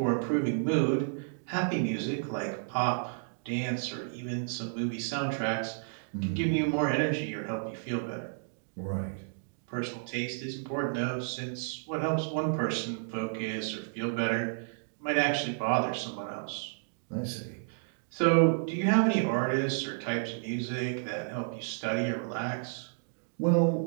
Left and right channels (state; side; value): silent; left; digital silence